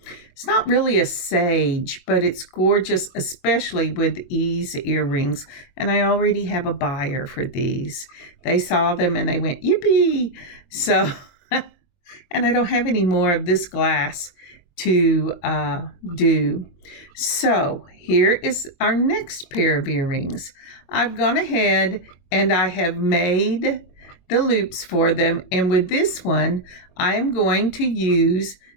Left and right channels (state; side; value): late; right; 22 ms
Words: not really a sage, but it's gorgeous, especially with these earrings. And I already have a buyer for these. They saw them and they went, yippee! So, and I don't have any more of this glass to do. So here is our next pair of earrings. I've gone ahead and I have made the loops for them. And with this one, I am going to use